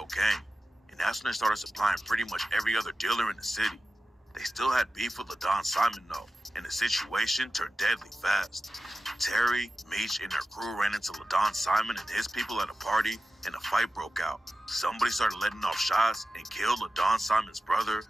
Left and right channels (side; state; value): both; normal; correlation 0.94